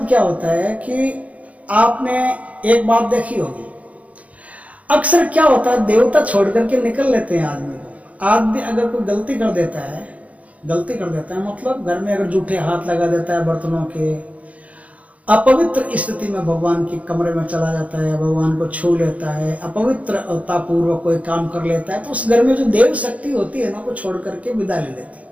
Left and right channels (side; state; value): left; late; 0.067 ms